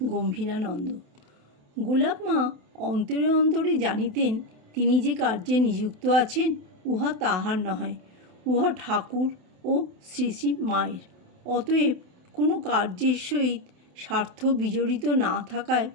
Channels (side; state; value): left; late; 27 ms